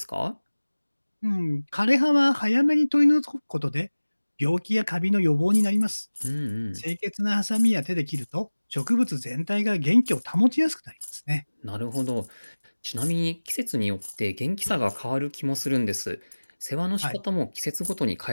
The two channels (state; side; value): inverted; both; correlation -1.00